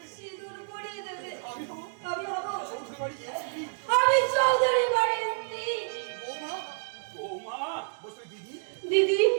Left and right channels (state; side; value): silent; left; digital silence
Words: সিঁদুর পরিয়ে দেবে। আমি হব আমি হব চৌধুরী বাড়ির স্ত্রী। আমি চৌধুরী বাড়ির স্ত্রী। বৌমা, বৌমা, বসে দিদি, দিদি,